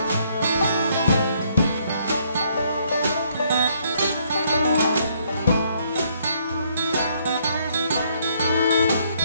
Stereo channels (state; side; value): inverted; both; correlation -0.69